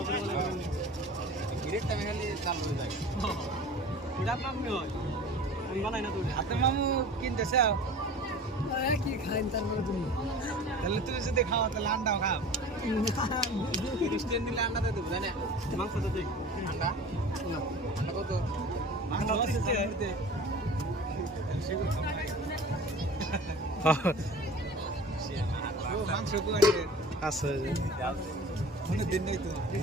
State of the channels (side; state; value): both; normal; correlation 0.40